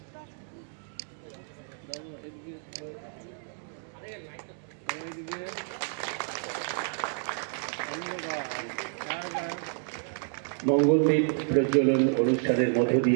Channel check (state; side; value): silent; left; digital silence